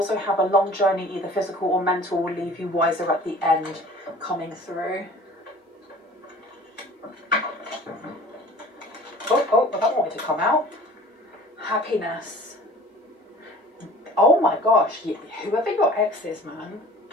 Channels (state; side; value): normal; both; correlation 0.46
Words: have a long journey, either physical or mental, will leave you wiser at the end coming through. Oh, well, that wanted to come out. Happiness. Oh my gosh, whoever your ex is, man,